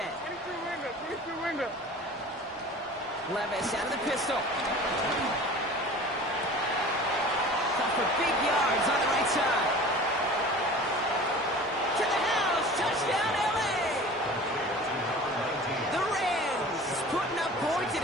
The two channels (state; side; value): normal; both; correlation 0.41